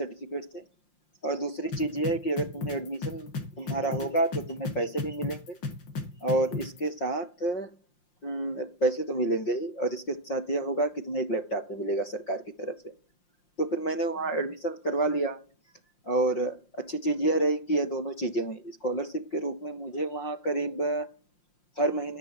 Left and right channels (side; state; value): right; late; 5.7 ms